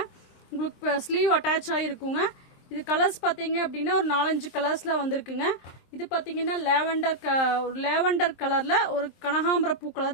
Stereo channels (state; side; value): late; right; 23 ms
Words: உங்களுக்கு ஸ்லீவ் அட்டாச் ஆகிருக்குங்க. இது கலர்ஸ் பாத்தீங்க அப்படின்னா ஒரு 4-5 கலர்ஸ்ல வந்திருக்குங்க. இது பாத்தீங்கன்னா லேவண்டர் கலர்ல ஒரு கனகாம்பர பூ கலர்